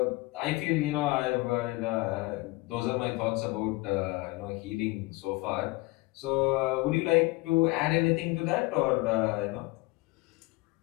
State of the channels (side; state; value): right; quieter; 22.2 dB